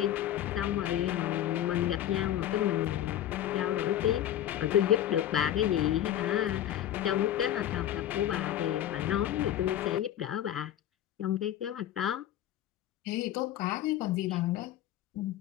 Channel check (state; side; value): quieter; right; 11.8 dB